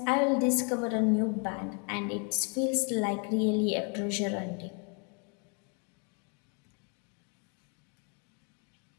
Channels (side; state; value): right; quieter; 37.1 dB